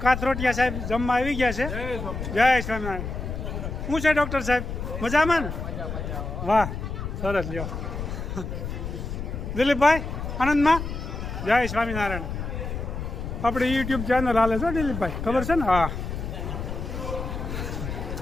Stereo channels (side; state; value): left; noise; rumble, 5 dB below the sound